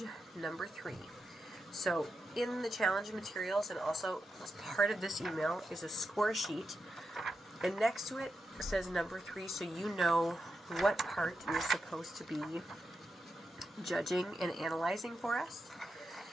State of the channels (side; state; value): both; normal; correlation 0.87